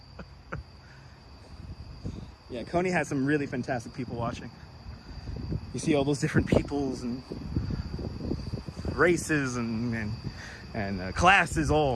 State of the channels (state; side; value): identical; both; correlation 1.00